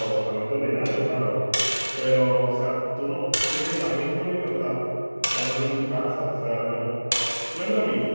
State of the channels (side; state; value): both; inverted; correlation -1.00